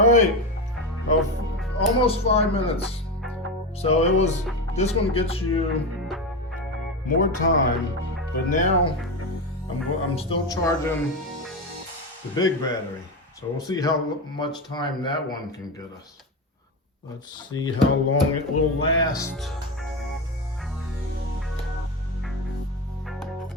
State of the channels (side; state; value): both; normal; correlation 0.17